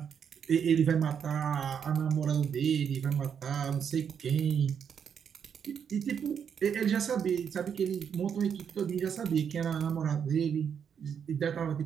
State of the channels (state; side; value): quieter; left; 7.6 dB